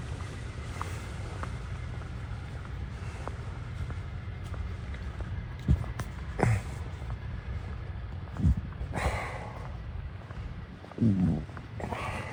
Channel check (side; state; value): both; identical; correlation 1.00